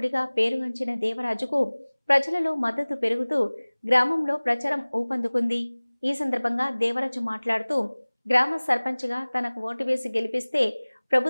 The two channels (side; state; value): both; inverted; correlation -1.00